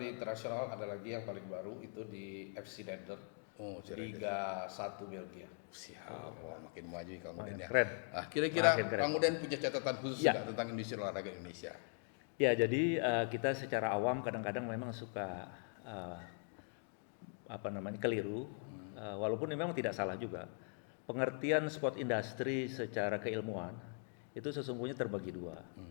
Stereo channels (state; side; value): silent; right; 50 dB below the other